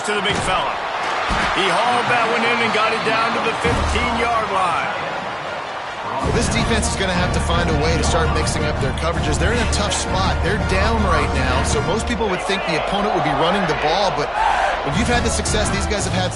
to the big fella. He hauled that one in and got it down to the 15-yard line. Well, this defense is going to have to find a way to start mixing up their coverages. They're in a tough spot. They're down right now, so most people would think the opponent would be running the ball, but if you've had the success these guys have had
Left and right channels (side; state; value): both; identical; correlation 1.00